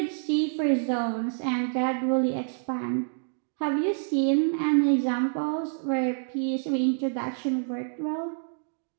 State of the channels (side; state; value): left; silent; digital silence